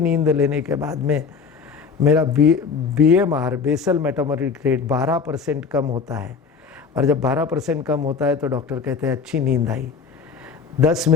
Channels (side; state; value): right; quieter; 5.5 dB